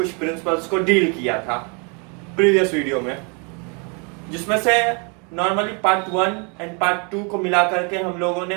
प्रिंसिपल्स को डील किया था प्रीवियस वीडियो में, जिसमें से नॉर्मली पार्ट 1 एंड पार्ट 2 को मिला करके हम लोगों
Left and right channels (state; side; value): quieter; left; 35.1 dB